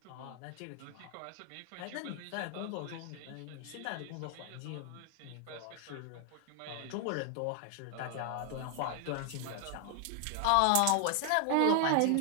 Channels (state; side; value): different; both; correlation 0.00